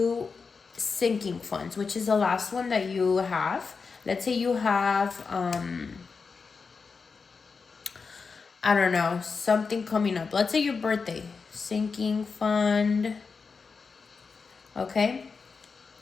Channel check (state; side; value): quieter; right; 5.0 dB